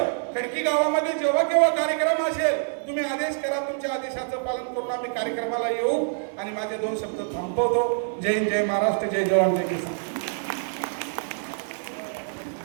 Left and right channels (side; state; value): left; silent; digital silence